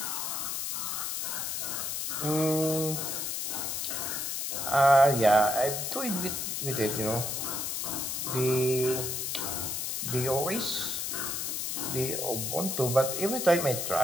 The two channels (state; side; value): noise; left; hiss, 2 dB below the sound